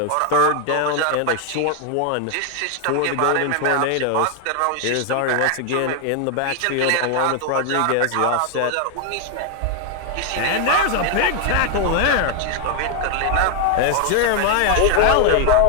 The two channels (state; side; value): different; both; correlation 0.00